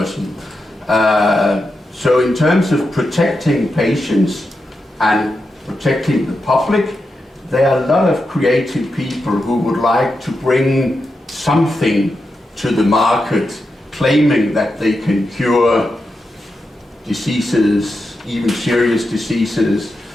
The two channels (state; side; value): normal; both; correlation 0.88